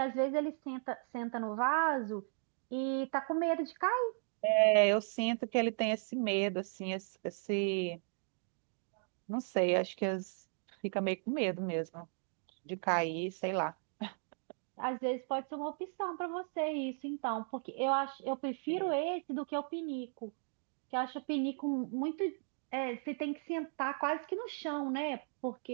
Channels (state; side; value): silent; left; 54 dB below the other